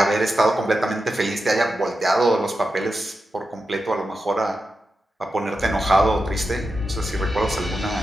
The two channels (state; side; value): normal; both; correlation 0.90